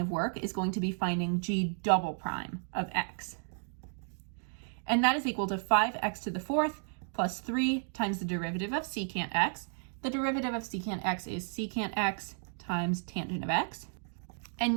work is going to be finding g double prime of x. And that is equal to 5x to the fourth plus 3 times the derivative of secant x. The derivative of secant x is secant x times tangent of x. And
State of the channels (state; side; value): silent; left; 56 dB below the other